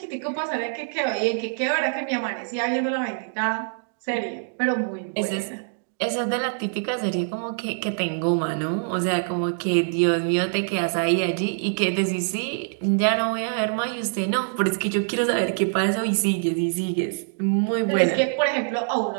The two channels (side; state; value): left; silent; digital silence